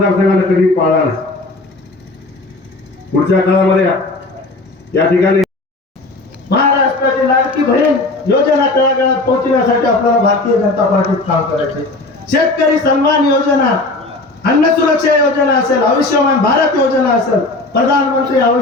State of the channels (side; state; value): right; quieter; 3.1 dB